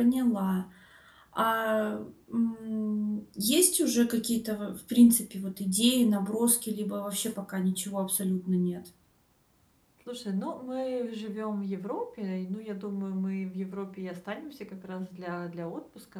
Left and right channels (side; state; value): both; identical; correlation 1.00